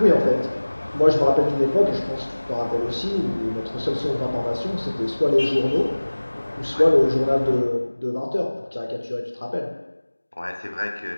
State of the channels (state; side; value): inverted; both; correlation -1.00